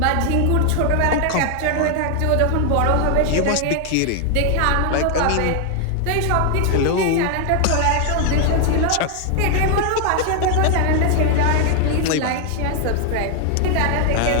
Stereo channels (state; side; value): different; both; correlation 0.00